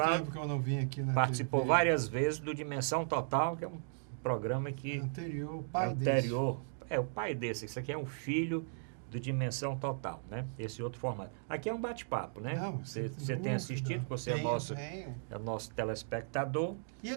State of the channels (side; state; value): left; silent; digital silence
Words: tempo que eu não vim aqui na participou TV. várias vezes do Dimensão Total, que é um programa que Anterior, o pai anterior. O pai desse. Isso aqui é um filho do Dimensão Total, né? Esse outro formato. Aqui é um bate-papo, né? Não, Você sem tem dúvida. assistido, você Tenho. é nosso telespectador. E